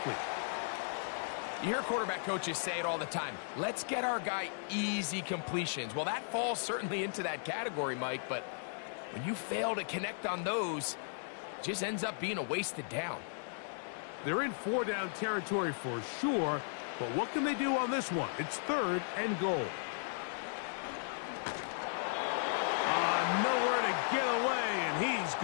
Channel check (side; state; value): right; silent; digital silence